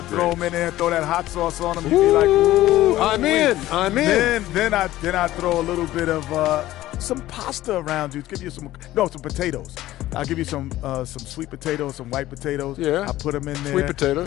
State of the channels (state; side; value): quieter; right; 15.3 dB